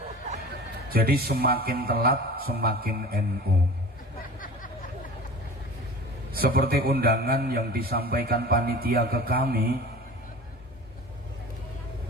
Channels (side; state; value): both; normal; correlation 0.39